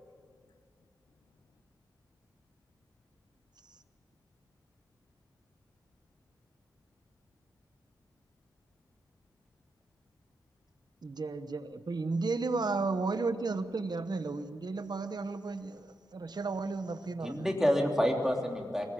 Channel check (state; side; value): normal; both; correlation 0.86